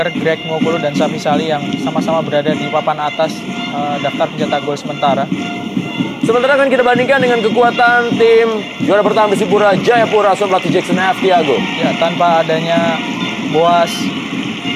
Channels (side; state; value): both; identical; correlation 1.00